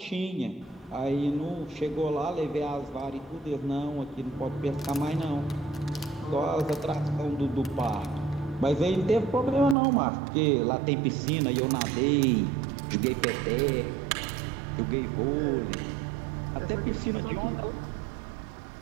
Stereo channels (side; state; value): left; drops out; at 9.8 s